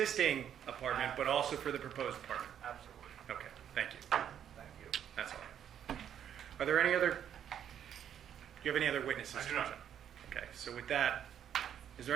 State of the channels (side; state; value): left; quieter; 9.4 dB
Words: apartment, but also for the proposed apartment? Absolutely. Okay, thank you. Thank you. That's all. Are there any other, do you have any other witnesses? I do not. Okay, so with that, is